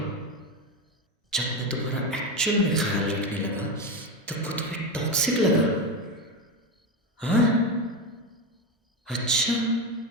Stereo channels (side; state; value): both; normal; correlation 0.15